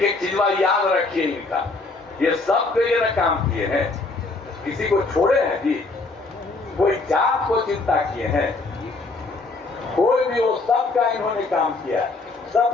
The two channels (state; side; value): quieter; right; 3.5 dB